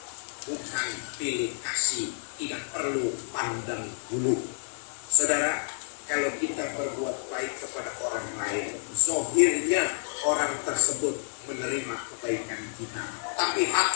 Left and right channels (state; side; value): silent; right; digital silence